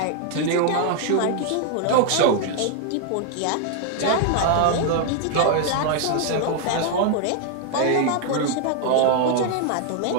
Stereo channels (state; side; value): different; both; correlation 0.00